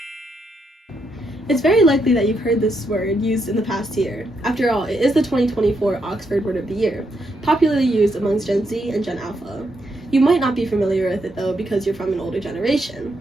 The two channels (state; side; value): normal; both; correlation 0.79